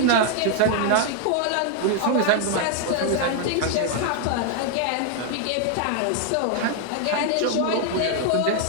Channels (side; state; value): both; different; correlation 0.00